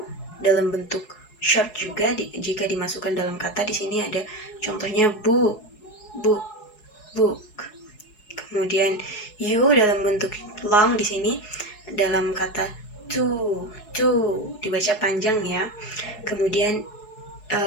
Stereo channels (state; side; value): late; right; 4.7 ms